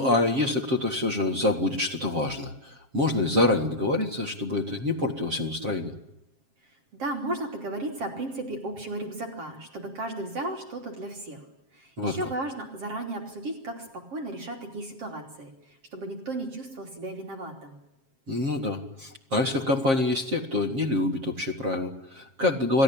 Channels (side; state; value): left; late; 7.5 ms